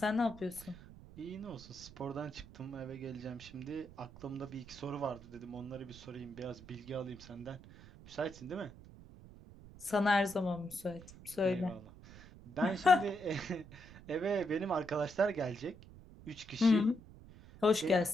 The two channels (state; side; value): noise; right; rumble, 18 dB below the sound